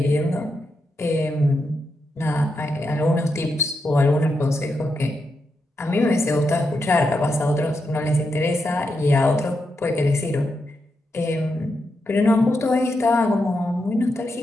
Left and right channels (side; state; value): both; normal; correlation 0.84